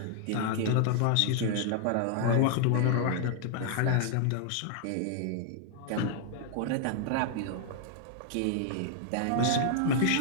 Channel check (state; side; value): different; both; correlation 0.00